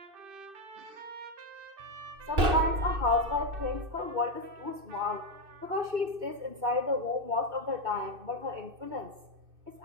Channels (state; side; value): late; left; 2.6 ms